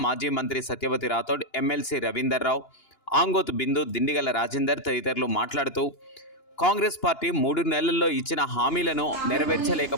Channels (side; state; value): right; late; 2.9 ms